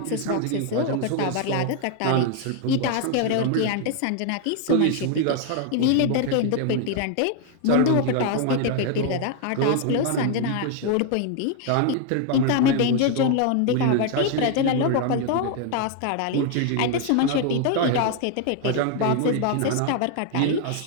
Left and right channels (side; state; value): both; different; correlation 0.00